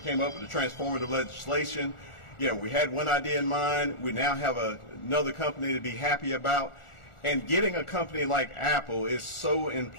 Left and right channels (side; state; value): right; late; 1.4 ms